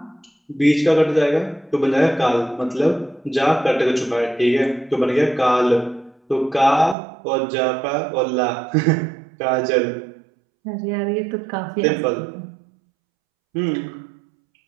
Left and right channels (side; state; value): left; drops out; at 7.0 s